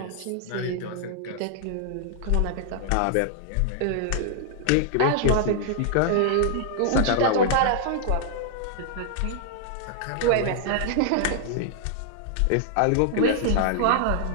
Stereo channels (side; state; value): both; different; correlation -0.01